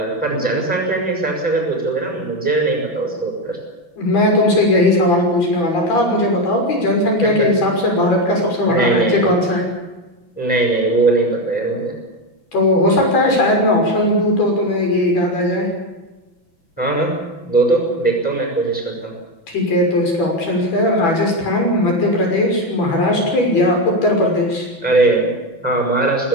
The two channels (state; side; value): late; right; 6.0 ms